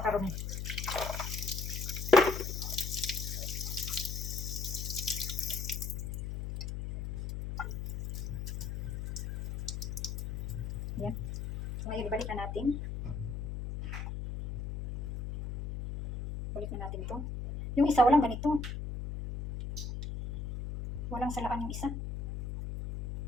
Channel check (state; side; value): noise; left; hum, 5 dB below the sound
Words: Ayan. So ngayon, ibalik na natin. Balik na natin to. Yung isa, walang ganito. Walang salaan yung isa.